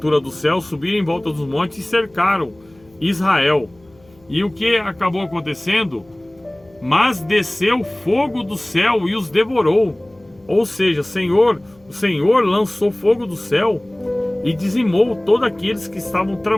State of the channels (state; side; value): noise; left; hum, 29 dB below the sound